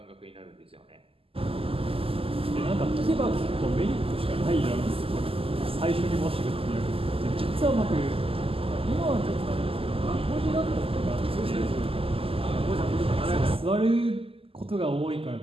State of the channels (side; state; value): left; late; 0.27 ms